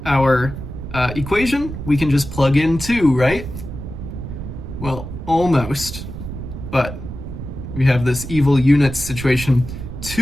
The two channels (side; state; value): right; noise; rumble, 9 dB below the sound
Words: our equation, we can just plug in 2, right? Well, almost, but we have this evil units situation.